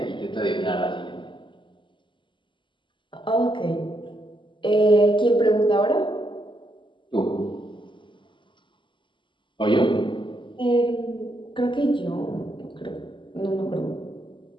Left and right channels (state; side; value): late; right; 0.24 ms